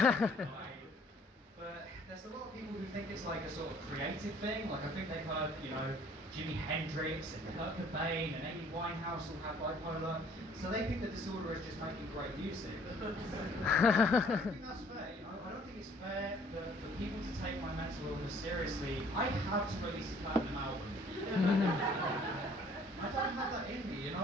But there's a lot of people who think it's like a sort of creative thing. Like I think they've heard, you know, Jimi Hendrix and Kurt Cobain and Amy Winehouse all have bipolar. So they think the disorder is just making great music. I think that's fair, you know. I don't think it's fair for people to take my mental illness seriously. I have to release a platinum album. I don't have that in me, you know.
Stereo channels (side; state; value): both; normal; correlation 0.57